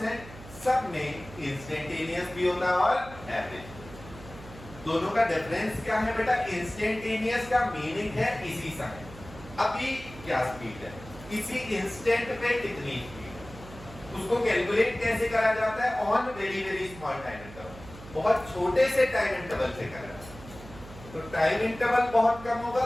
हैं सब में इंस्टेंटेनियस भी होता है और एवरेज। दोनों का डिफरेंस क्या है बेटा, इंस्टेंटेनियस का मीनिंग है इसी समय, अभी क्या स्पीड है, इसी इंस्टेंट पे कितनी स्पीड है। उसको कैलकुलेट कैसे करा जाता है, on very very small time interval, बहुत छोटे से टाइम इंटरवल से करा जाता है। तो टाइम इंटरवल बहुत कम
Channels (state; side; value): noise; right; hum, 16 dB below the sound